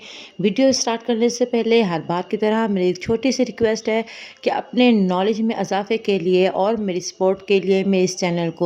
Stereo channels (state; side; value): identical; both; correlation 1.00